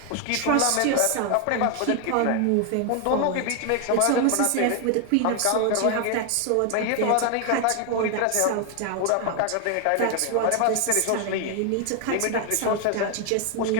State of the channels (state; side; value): different; both; correlation 0.01